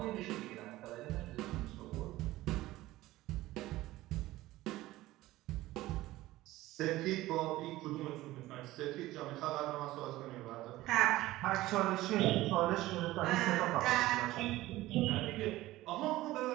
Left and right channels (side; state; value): left; quieter; 17.0 dB